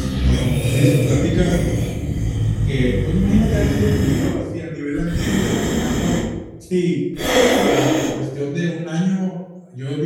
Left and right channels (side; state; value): both; identical; correlation 1.00